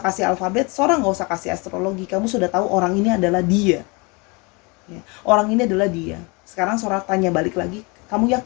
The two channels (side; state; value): right; quieter; 28.5 dB